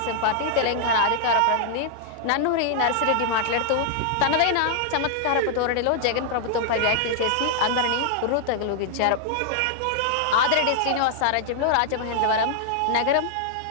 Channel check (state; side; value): different; both; correlation -0.01